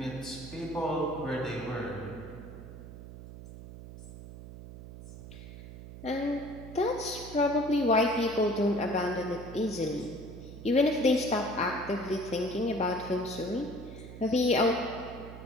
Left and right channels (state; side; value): noise; right; hum, 13 dB below the sound